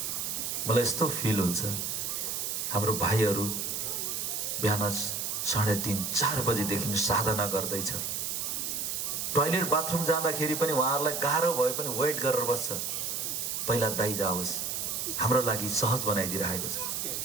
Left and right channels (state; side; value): noise; right; hiss, 2 dB below the sound